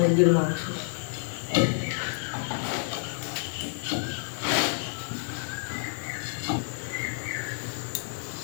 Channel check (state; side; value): silent; right; digital silence